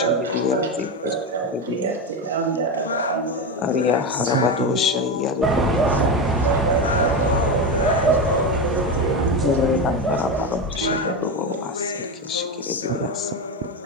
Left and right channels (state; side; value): normal; both; correlation 0.16